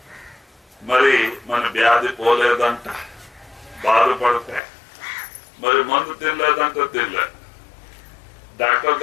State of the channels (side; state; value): right; drops out; at 4.6 s